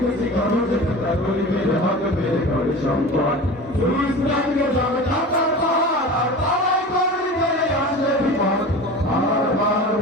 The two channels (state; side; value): normal; both; correlation 0.34